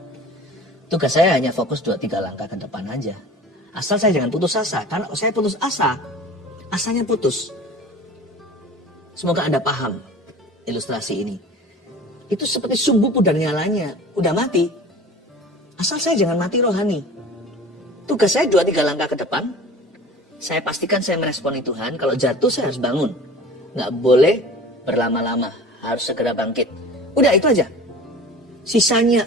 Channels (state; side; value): normal; both; correlation 0.41